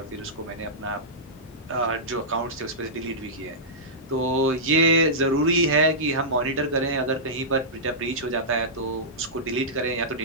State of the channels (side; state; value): both; normal; correlation -0.14